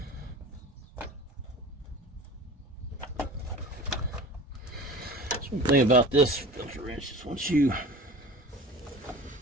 One thing about this filter wrench is once you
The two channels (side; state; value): both; normal; correlation 0.38